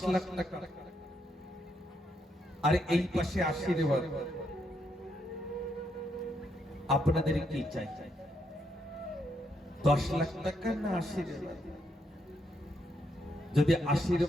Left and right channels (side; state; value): both; normal; correlation 0.77